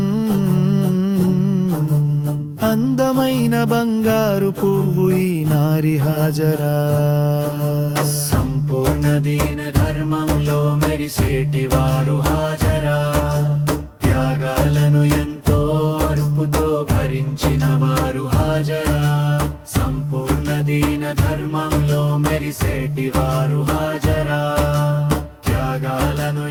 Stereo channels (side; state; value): both; identical; correlation 1.00